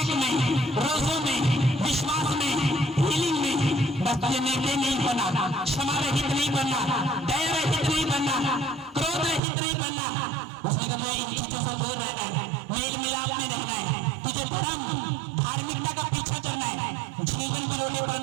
में, रोजों में, विश्वास में, हीलिंग में। बस तुझे निर्दय नहीं बनना, क्षमा रहित नहीं बनना, दया रहित नहीं बनना, क्रोध रहित नहीं बनना। उसने कहा इन चीजों से दूर रहना है, मेल मिलाप में रहना है, तुझे धर्म धार्मिकता का पीछा करना है, जीवन बिलोने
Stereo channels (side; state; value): left; drops out; at 9.4 s